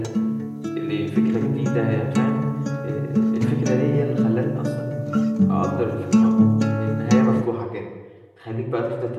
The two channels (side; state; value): both; identical; correlation 1.00